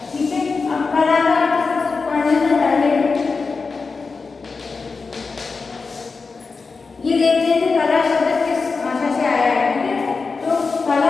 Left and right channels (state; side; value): quieter; right; 4.5 dB